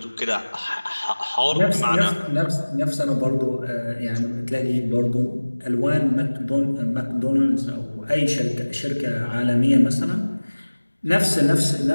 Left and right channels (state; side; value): inverted; both; correlation -1.00